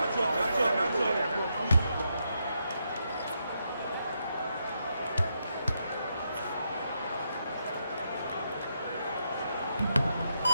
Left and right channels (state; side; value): inverted; both; correlation -0.81